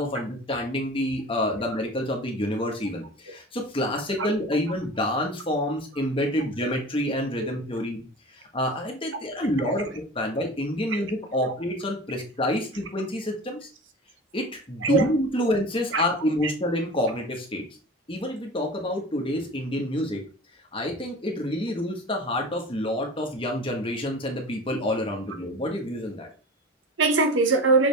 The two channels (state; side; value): normal; both; correlation 0.35